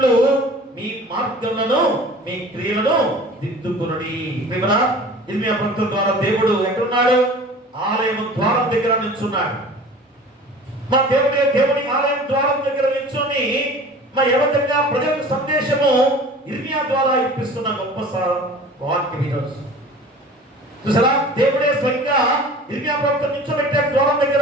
మీ మార్గములను, మీ క్రియలను దిద్దుకునుడి. ఇర్మియా ప్రవక్త ద్వారా దేవుడు ఎక్కడున్నాడు, ఆలయం ద్వారం దగ్గర నిల్చున్నాడు. మా దేవుని ఆలయం ద్వారం దగ్గర నిల్చొని ఏ విధంగా ప్రజలకు సందేశము ఇర్మియా ద్వారా ఇప్పిస్తున్న గొప్ప వాక్యం ఈరోజు చూసారా. దేవుడే స్వయంగా ఇర్మియా ప్రవక్త నిల్చోబెట్టాడు ద్వారం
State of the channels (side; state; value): both; normal; correlation 0.42